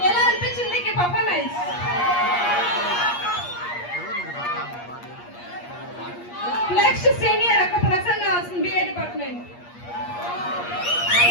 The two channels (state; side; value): late; right; 8.5 ms